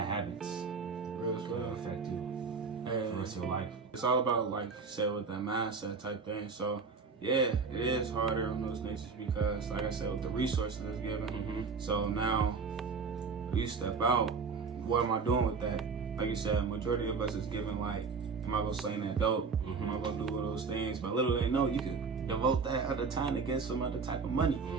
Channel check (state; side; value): quieter; left; 5.0 dB